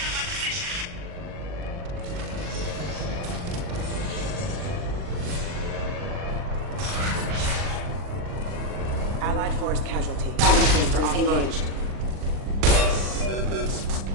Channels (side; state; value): left; late; 40 ms